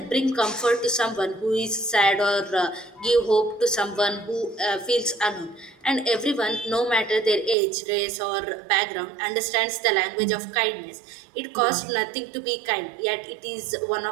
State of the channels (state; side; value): drops out; left; at 7.6 s